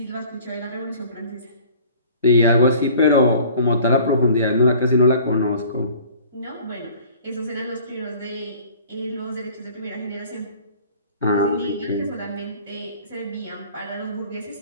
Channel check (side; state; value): both; inverted; correlation -0.49